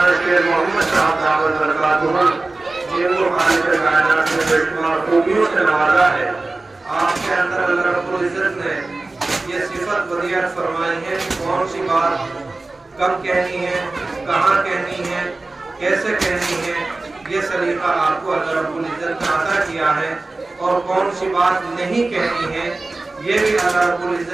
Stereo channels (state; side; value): quieter; left; 3.2 dB